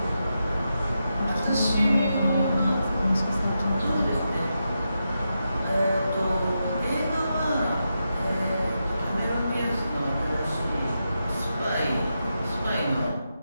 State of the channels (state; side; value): inverted; both; correlation -0.87